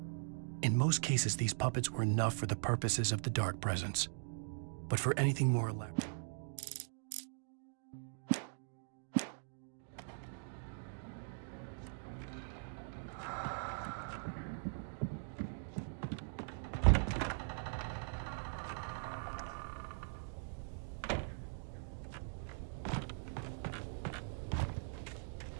In most cases, these puppets were enough for the purposes of the dark presence. But for anything more elaborate,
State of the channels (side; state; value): left; silent; digital silence